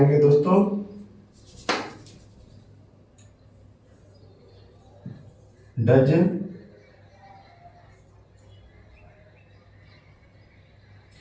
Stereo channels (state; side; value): identical; both; correlation 1.00